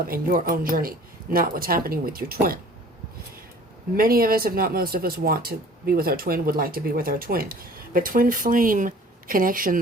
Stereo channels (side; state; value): both; normal; correlation 0.49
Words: and your own journey, not what's happening with your twin. Many of us, if not most of us, want to be with our twin, would like to be with our twin. But twin flame